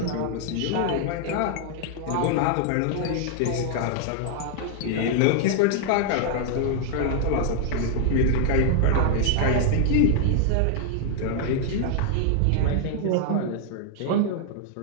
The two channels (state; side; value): different; both; correlation 0.00